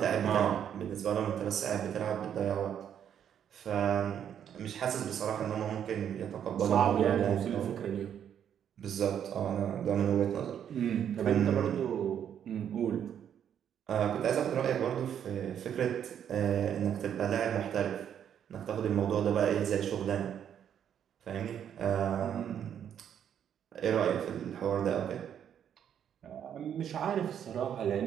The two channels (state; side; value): quieter; left; 9.1 dB